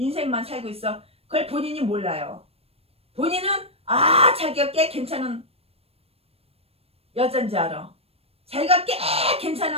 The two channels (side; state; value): left; late; 0.28 ms